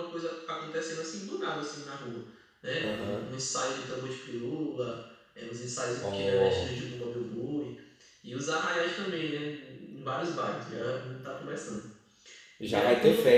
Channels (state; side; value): identical; both; correlation 1.00